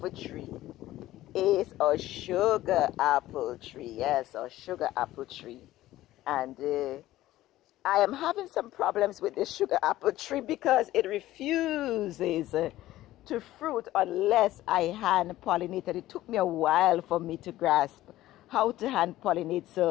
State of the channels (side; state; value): right; quieter; 15.3 dB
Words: tree is a sugar apple tree. Yes, a sugar apple tree. And I am having some problems with this sugar apple tree because it refuses to fruit unless I hand pollinate. And it took me a while for me to grasp how to hand pollinate.